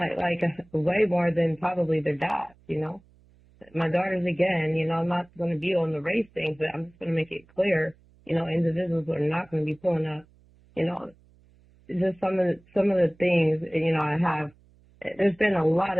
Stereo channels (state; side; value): noise; right; hum, 30 dB below the sound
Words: Way more than probably their dads, My daughters, again, I'm not going to be on the race thing, but I'm just going to make it clear, individuals are not going to be pulling up, just some of the things, I have. There's been a lot